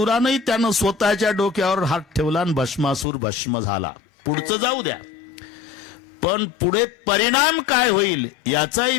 त्यानं स्वतःच्या डोक्यावर हात ठेवला आणि भस्मासूर भस्म झाला. पुढचं जाऊ द्या, पण पुढे परिणाम काय होईल याचाही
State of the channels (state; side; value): drops out; right; at 3.1 s